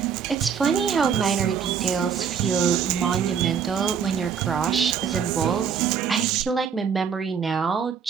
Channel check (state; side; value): quieter; left; 7.1 dB